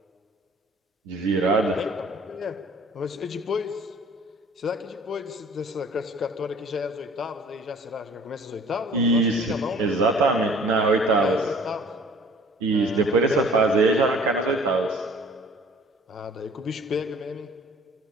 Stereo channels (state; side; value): normal; both; correlation 0.50